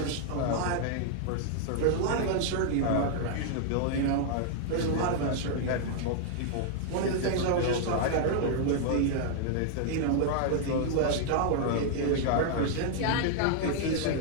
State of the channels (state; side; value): different; both; correlation -0.01